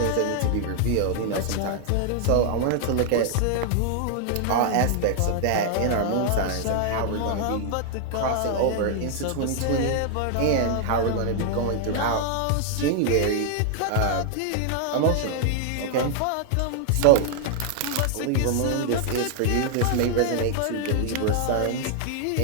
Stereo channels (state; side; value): different; both; correlation 0.00